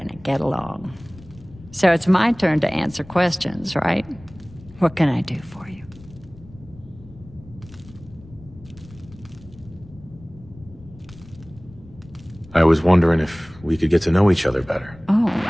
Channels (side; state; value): left; noise; rumble, 21 dB below the sound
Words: get along. So it's my turn to answer questions, right? What can I do for you? I was wondering if we could get to know each other better. Oh,